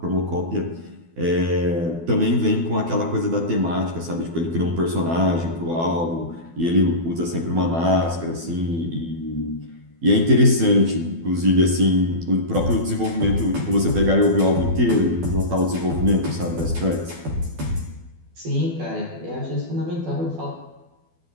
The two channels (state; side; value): late; left; 12 ms